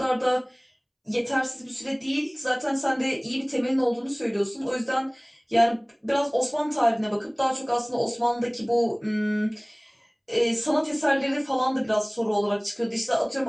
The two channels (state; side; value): identical; both; correlation 1.00